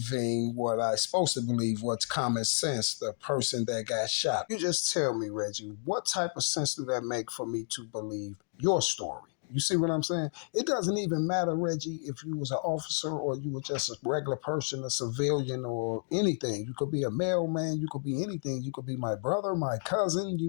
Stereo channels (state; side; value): silent; right; digital silence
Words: what I'm supposed to believe, what's common sense, the person that got shot. You just tell me, Reggie, what type of sense do that make for me to believe your story? You see what I'm saying? It doesn't even matter, Reggie, if you was an officer or you were just a regular person, a civilian or anything. You could be a mailman, you could be anything. You could be my brother, my cousin,